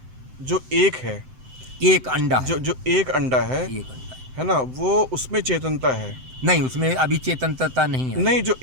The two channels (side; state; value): left; late; 7.8 ms